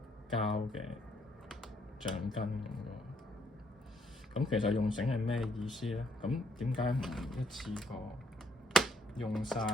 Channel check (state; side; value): normal; both; correlation 0.70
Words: 膠嘅橡筋咁喎。咁其實用繩係咩意思咧？咁點解唔一次過用晒